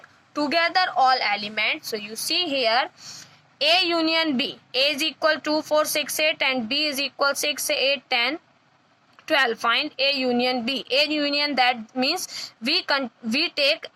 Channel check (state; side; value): identical; both; correlation 1.00